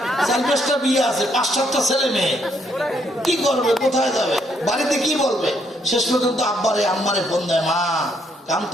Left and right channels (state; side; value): normal; both; correlation 0.72